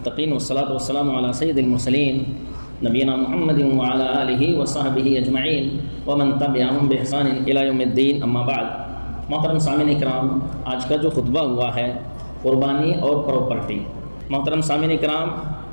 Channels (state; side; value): inverted; both; correlation -1.00